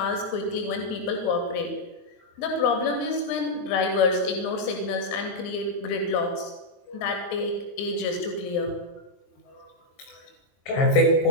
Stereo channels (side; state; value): right; late; 22 ms